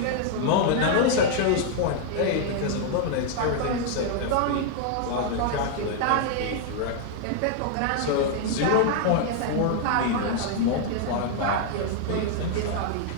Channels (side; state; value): both; different; correlation 0.00